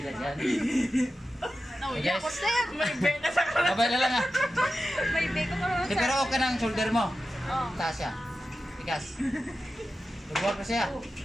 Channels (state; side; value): normal; both; correlation 0.92